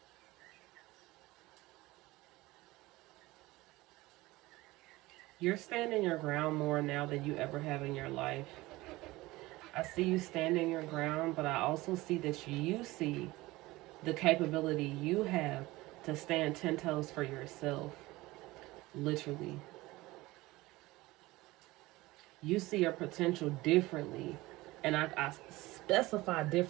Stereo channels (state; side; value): quieter; left; 19.7 dB